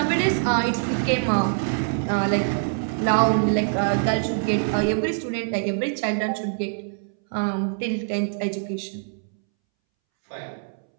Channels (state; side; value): silent; left; 62 dB below the other